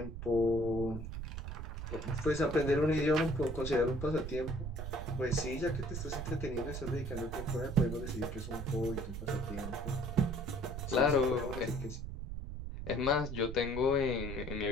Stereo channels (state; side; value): noise; right; rumble, 6 dB below the sound